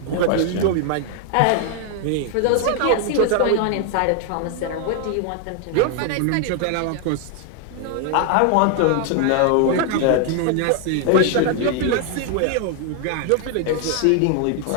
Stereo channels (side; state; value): both; different; correlation 0.00